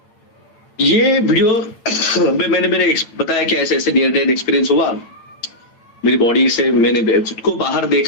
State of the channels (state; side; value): late; right; 8.8 ms